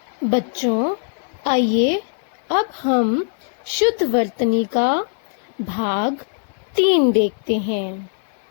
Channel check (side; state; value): right; silent; digital silence